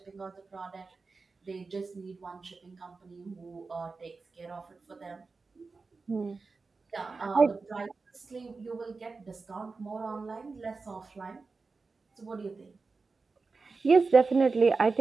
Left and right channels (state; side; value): quieter; left; 4.2 dB